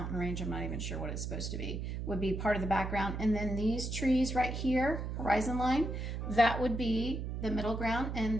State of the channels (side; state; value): right; noise; hum, 4 dB below the sound